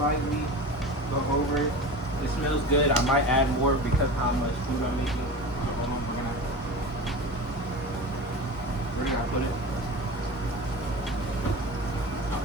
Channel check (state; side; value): normal; both; correlation 0.32